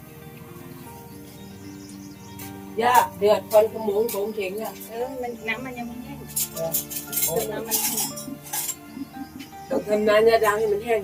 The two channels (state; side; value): identical; both; correlation 1.00